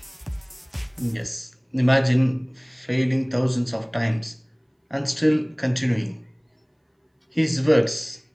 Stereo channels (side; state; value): both; identical; correlation 1.00